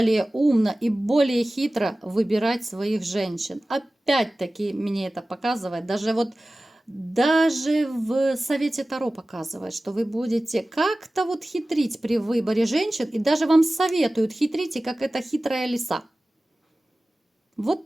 умно и более хитро выбирать своих женщин. Опять-таки мне это показывает, даже в совете Таро показывает, что вы будете как-то вот хитрить при выборе женщин, и даже вам советуют: хитрите, как эта хитрая лиса.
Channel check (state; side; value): normal; both; correlation 0.97